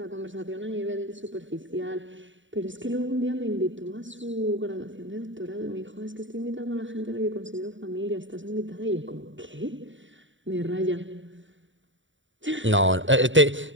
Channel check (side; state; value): left; late; 0.55 ms